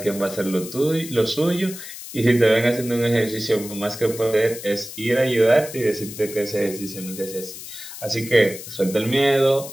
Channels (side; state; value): left; noise; hiss, 12 dB below the sound